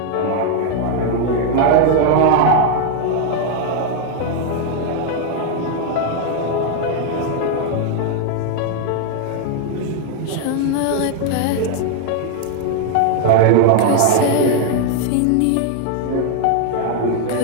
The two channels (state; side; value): different; both; correlation 0.00